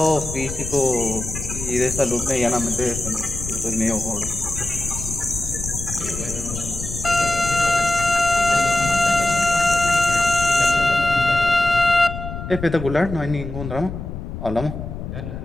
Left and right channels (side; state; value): left; noise; rumble, 8 dB below the sound